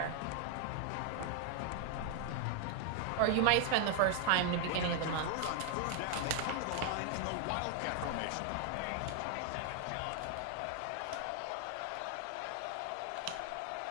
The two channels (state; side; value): different; both; correlation 0.00